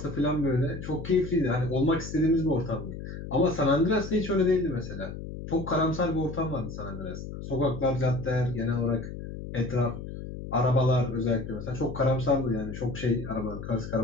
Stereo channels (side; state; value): left; noise; hum, 9 dB below the sound